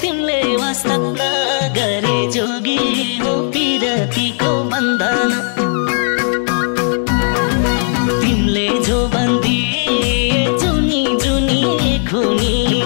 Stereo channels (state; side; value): silent; right; digital silence